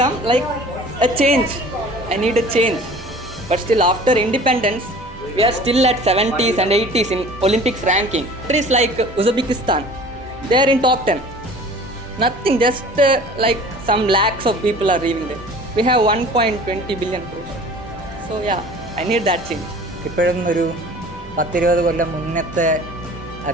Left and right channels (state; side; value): normal; both; correlation 0.45